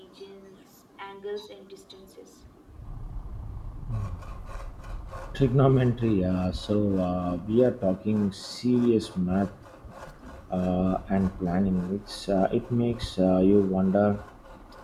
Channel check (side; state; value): both; identical; correlation 1.00